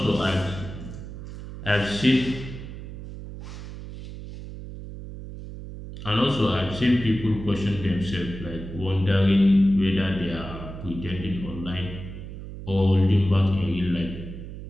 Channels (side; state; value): right; noise; hum, 11 dB below the sound